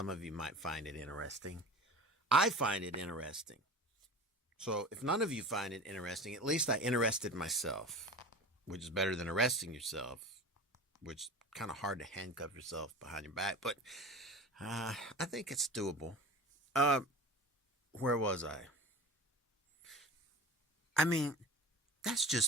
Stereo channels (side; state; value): both; normal; correlation 0.35